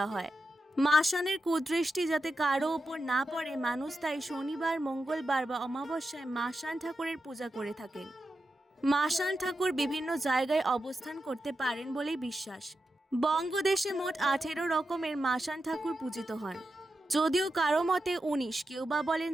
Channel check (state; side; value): normal; both; correlation 0.89